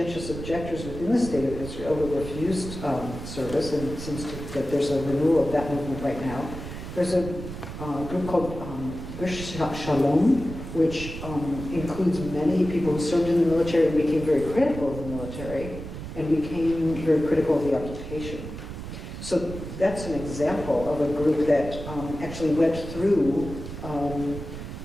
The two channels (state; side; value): noise; right; rumble, 9 dB below the sound